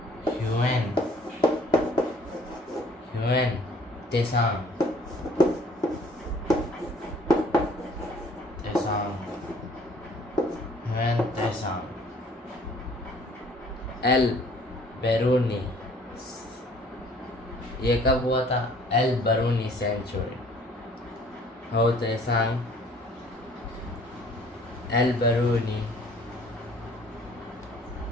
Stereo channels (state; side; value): normal; both; correlation 0.56